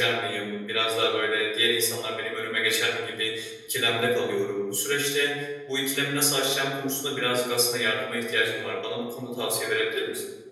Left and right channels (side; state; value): both; identical; correlation 1.00